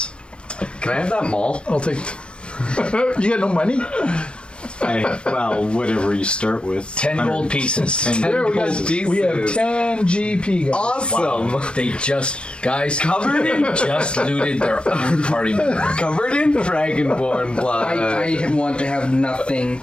Can I have that maul? I'll take. You got no money? Whatever you start with. 10 gold pieces. 10 There we gold go. pieces. We have 10 GP, guys. Awesome! Wow. They just Covered in just looted their own party member. Covered in dragonborn blood. I want to have nothing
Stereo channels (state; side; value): late; right; 0.055 ms